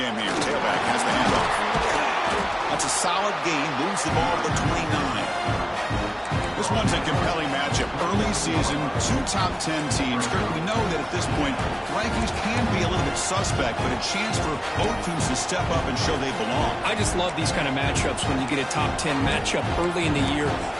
here. Tailback has the handoff. That's a solid gain. Moves the ball to the 29. This one's a compelling matchup. Early season, two top 10 teams. Kirk, we know that at this point, rankings can be a little bit suspect, but a chance for both teams to step up and show they belong. I just love these kind of matchups when you get a top 10 matchup early in the year.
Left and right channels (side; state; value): both; identical; correlation 1.00